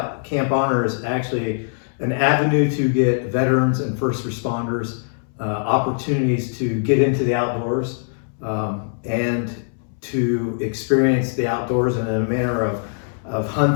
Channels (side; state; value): right; silent; 64 dB below the other